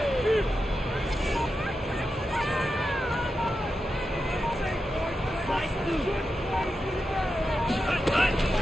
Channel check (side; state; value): both; normal; correlation 0.89